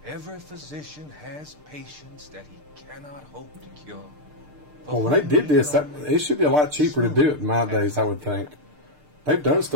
Every physician has patients that he cannot hope to cure. For Well, when they whom did we this, can that only it should be a lot cheaper to do it nowadays, I would think. They've done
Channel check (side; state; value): left; late; 6.7 ms